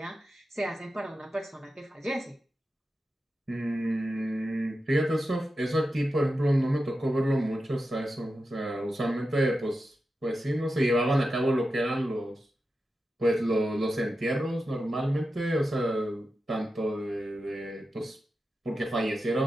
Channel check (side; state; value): both; normal; correlation 0.91